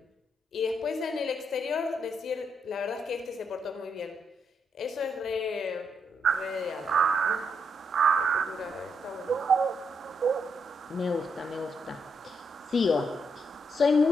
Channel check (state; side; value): normal; both; correlation 0.78